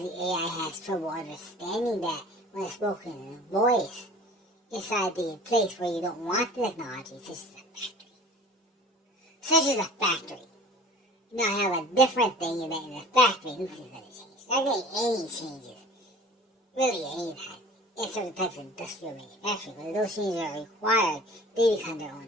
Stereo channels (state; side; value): normal; both; correlation 0.44